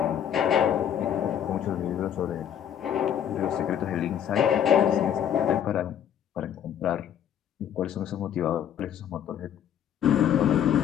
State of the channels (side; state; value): right; quieter; 9.5 dB